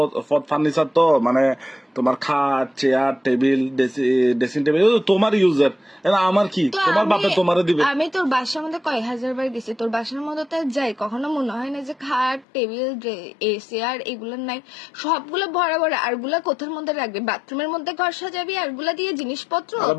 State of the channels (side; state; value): right; drops out; at 12.5 s